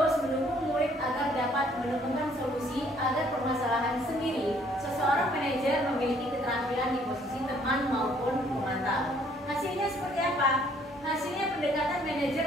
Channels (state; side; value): normal; both; correlation 0.62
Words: mendukung murid agar dapat menemukan solusi agar permasalahan sendiri. Seseorang manajer memiliki keterampilan di posisi teman maupun pemantau. Hasilnya seperti apa? Hasilnya pendekatan manajer